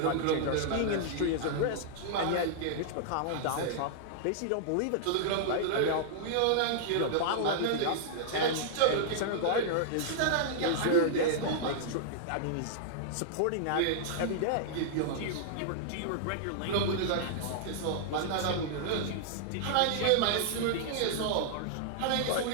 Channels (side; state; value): both; different; correlation -0.01